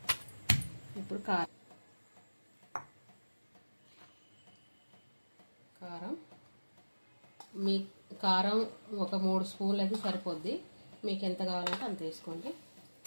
ఇప్పుడు కారం మీ కారం ఒక 3 స్పూన్లు అయితే సరిపోద్ది. మీకు ఎంత కావాలంటే అంత వేసుకోండి.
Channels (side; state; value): both; inverted; correlation -1.00